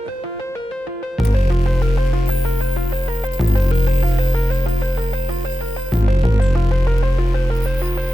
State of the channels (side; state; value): both; normal; correlation 0.92